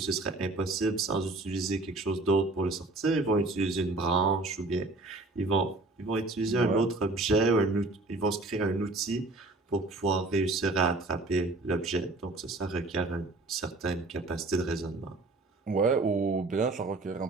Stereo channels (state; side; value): quieter; left; 3.1 dB